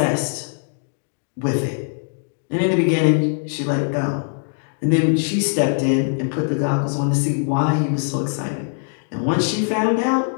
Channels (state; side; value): silent; right; 65 dB below the other